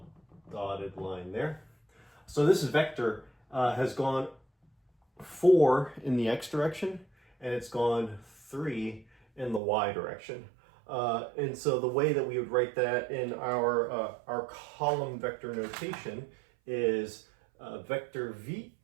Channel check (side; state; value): left; drops out; at 9.6 s